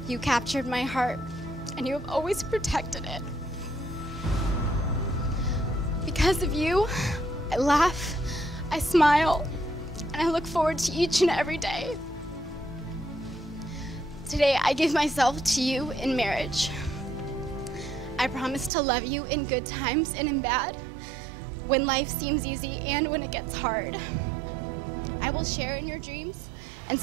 you captured my heart, and you have always protected it. Because of you, I laugh, I smile, and I look forward to each and every day. Today, I give myself to you in marriage. I promise to love you in good times and in bad, when life seems easy and when it gets hard. I will share in your dreams and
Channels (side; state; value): left; drops out; at 18.7 s